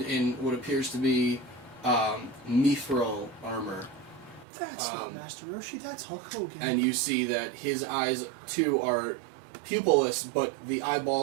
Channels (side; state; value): left; drops out; at 4.5 s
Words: in what appears to be mithril armor. That's not Master Roshi, that's Hulk Hogan. And you see that his eyes, too, are pupilless, but the